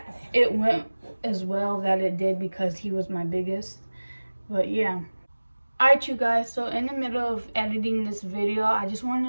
it went as well that it did because he was my biggest. But yeah. Alright you guys, so in the middle of editing this video, I just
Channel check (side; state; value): both; inverted; correlation -1.00